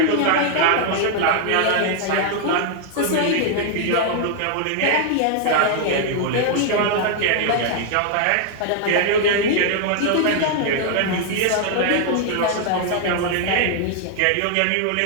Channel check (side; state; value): both; different; correlation 0.00